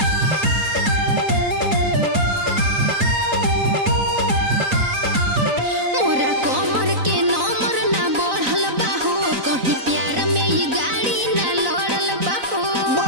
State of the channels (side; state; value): left; late; 4.0 ms